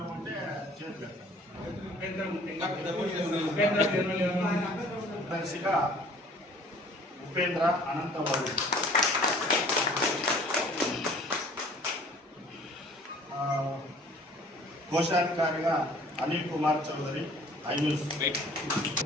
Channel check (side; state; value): both; normal; correlation 0.52